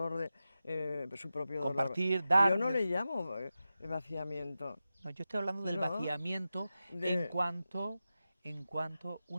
su propio Compartir, dolor. dar. Yo no le llamo vaciamiento. No, yo estoy hablando del No, vaciamiento en cuanto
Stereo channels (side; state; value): both; inverted; correlation -0.93